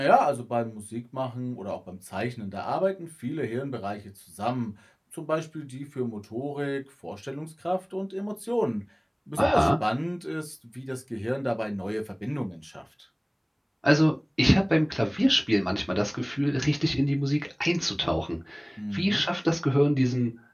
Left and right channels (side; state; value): both; identical; correlation 1.00